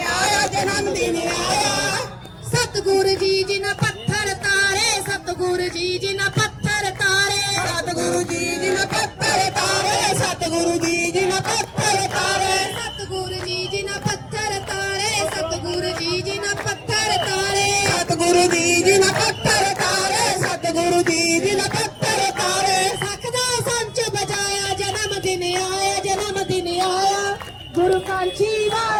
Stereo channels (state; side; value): identical; both; correlation 1.00